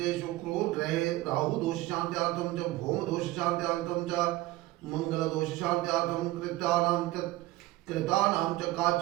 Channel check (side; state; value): left; quieter; 17.6 dB